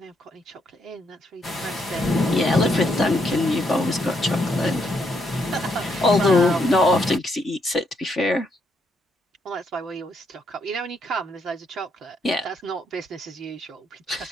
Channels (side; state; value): both; normal; correlation 0.76